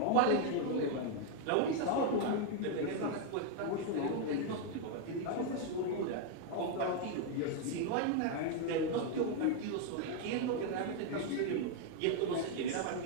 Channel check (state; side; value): different; both; correlation 0.01